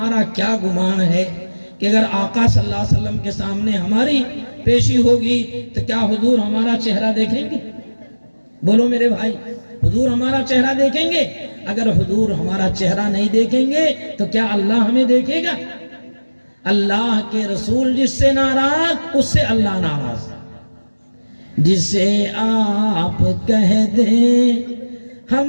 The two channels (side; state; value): both; inverted; correlation -1.00